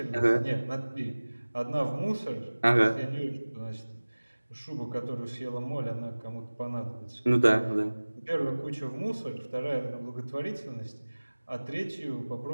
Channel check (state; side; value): inverted; both; correlation -1.00